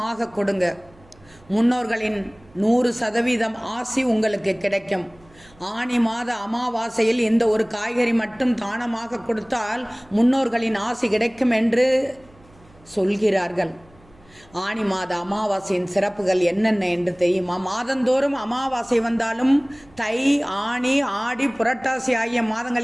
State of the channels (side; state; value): right; noise; hum, 28 dB below the sound